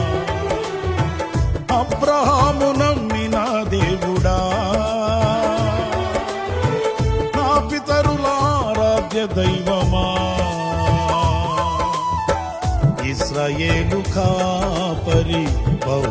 అబ్రహాము నమ్మిన దేవుడా, నా పితరుల ఆరాధ్య దైవమా. ఇశ్రాయేలు కాపరి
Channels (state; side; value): identical; both; correlation 1.00